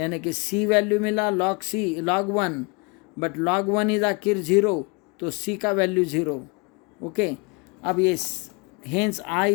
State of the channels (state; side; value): quieter; right; 30.5 dB